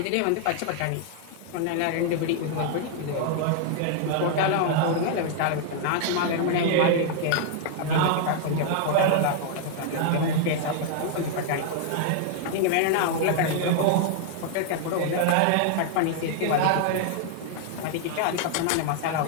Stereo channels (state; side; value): different; both; correlation 0.00